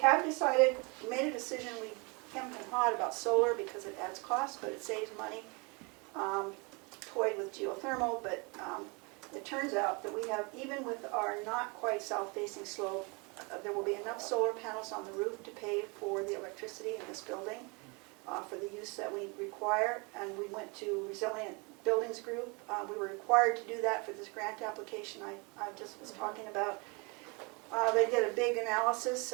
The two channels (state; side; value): quieter; left; 30.2 dB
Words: decided, we made a decision, we hemmed and hawed about solar because it adds cost, but it saves money. Toyed with geothermal, but it turns out that we have, even with our not quite south-facing slope, there will be enough solar panels on the roof to pay for the electricity in this building for the use that we require. And we went to Resilient Buildings Group. We were required to do that for this grant application I just was talking about. They did a big analysis